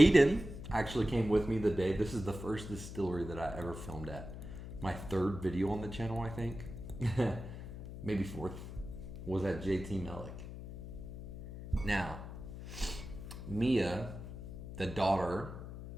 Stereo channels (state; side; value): noise; left; hum, 10 dB below the sound